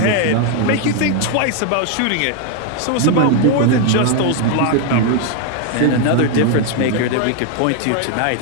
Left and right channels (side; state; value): both; different; correlation 0.01